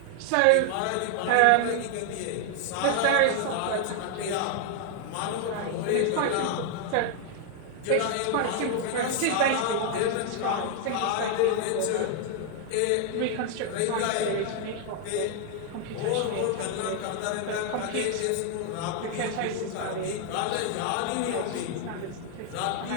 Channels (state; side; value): different; both; correlation 0.00